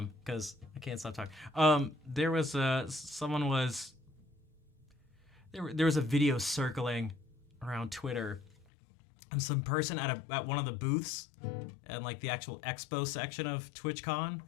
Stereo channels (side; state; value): right; drops out; at 8.7 s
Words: because I can't stop talking. There was there was a video circling around Twitter, and some person at one of the booths, and like the actual expo section of TwitchCon,